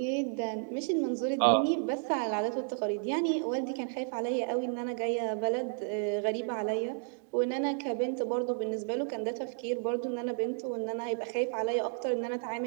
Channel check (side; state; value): left; silent; 56 dB below the other